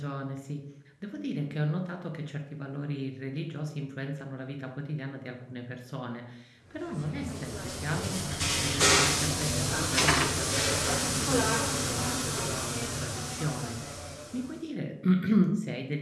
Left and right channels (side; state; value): both; identical; correlation 1.00